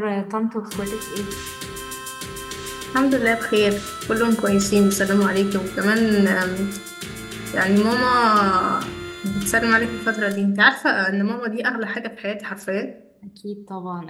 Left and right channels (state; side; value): identical; both; correlation 1.00